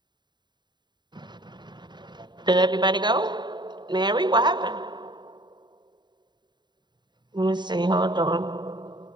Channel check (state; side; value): late; left; 0.21 ms